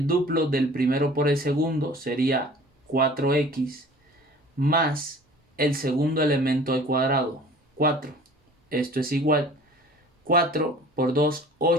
duplo del primero por el segundo, sería 4x, más el segundo elemento al cuadrado, 4. Esto es igual 4 por 2,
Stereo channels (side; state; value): both; normal; correlation 0.46